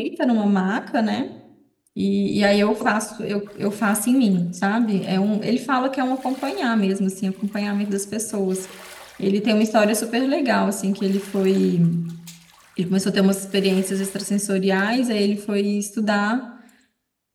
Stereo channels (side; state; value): both; identical; correlation 1.00